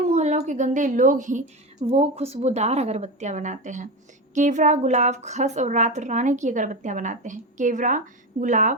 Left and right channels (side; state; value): both; normal; correlation 0.19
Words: के गंदे लोग ही वो खुशबूदार अगरबत्तियां बनाते हैं। केवड़ा, गुलाब, खस और रात रानी की अगरबत्तियां बनाते हैं। केवड़ा,